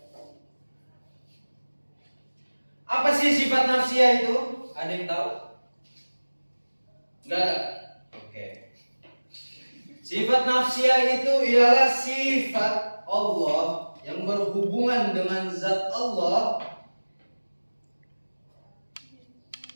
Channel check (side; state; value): both; inverted; correlation -1.00